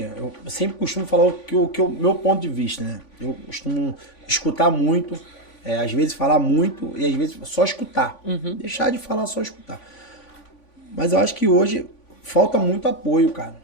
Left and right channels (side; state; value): right; late; 3.5 ms